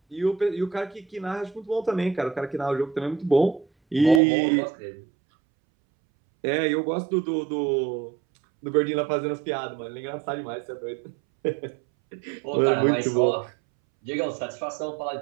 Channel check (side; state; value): left; drops out; at 4.2 s